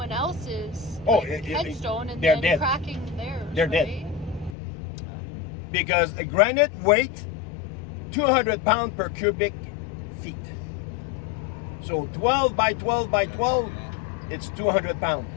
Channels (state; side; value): drops out; right; at 4.5 s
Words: else's Oh, headstone and they're then dead. cracking theirs. They're dead. right? Because the granite weight 200 pounds per cubic feet. So 12 by 12 by 12, it's 200 pounds.